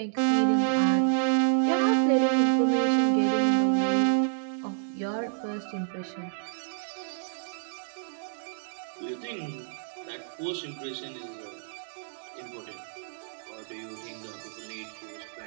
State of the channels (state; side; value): silent; left; digital silence